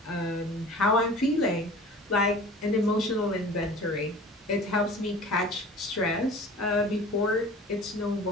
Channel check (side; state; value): both; normal; correlation 0.42